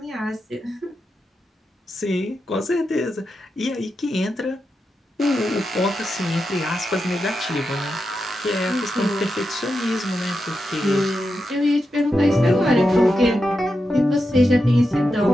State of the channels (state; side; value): normal; both; correlation 0.88